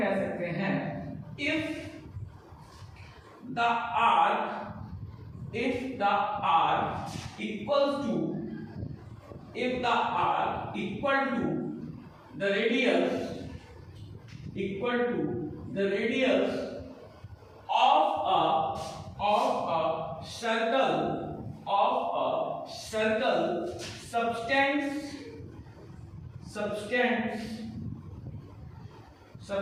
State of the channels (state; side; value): identical; both; correlation 1.00